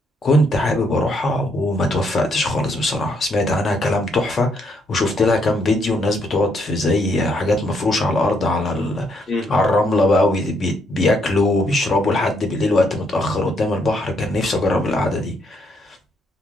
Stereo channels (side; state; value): both; normal; correlation 0.73